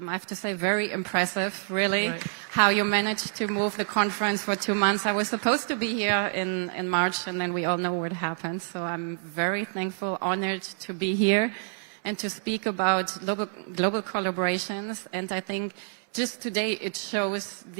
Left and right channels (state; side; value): silent; left; 60 dB below the other